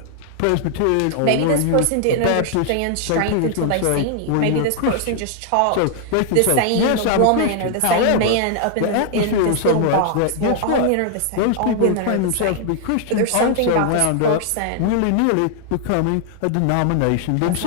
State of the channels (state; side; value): different; both; correlation 0.00